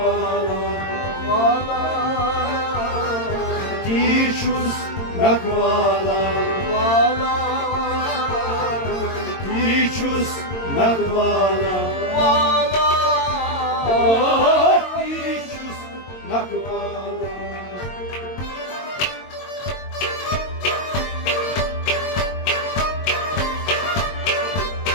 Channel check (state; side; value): late; right; 22 ms